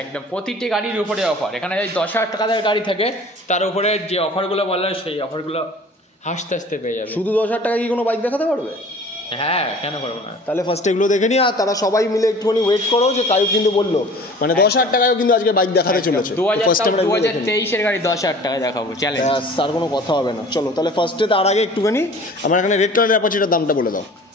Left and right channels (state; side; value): normal; both; correlation 0.45